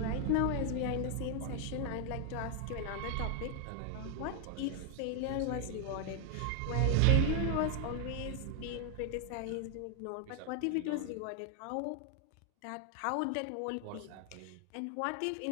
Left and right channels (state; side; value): different; both; correlation 0.00